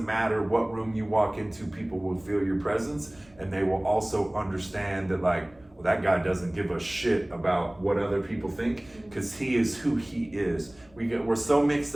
matter what room you walk into, people will feel your presence, and they will also understand that like, well, that guy doesn't give a shit about what other people think because he is who he is. We're so mixed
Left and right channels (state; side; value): noise; right; rumble, 28 dB below the sound